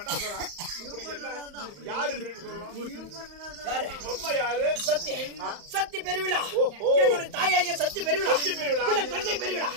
இப்படி என்ன? யாரு திருடி சொல்லலாம்? யாரு? அம்மா யாரு? சத்தி. சத்தி பெருவிழா. ஓஹோ. என்னுடைய தாயாகிய சத்தி பெருவிழா. சத்தி பெருவிழா. இல்ல தங்கை பெருவிழா.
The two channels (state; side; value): late; left; 35 ms